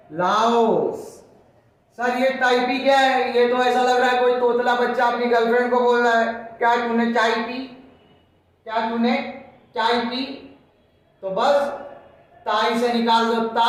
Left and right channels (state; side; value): identical; both; correlation 1.00